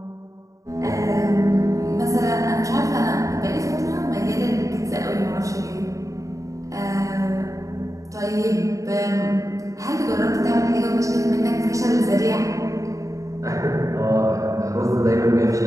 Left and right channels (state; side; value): late; left; 0.16 ms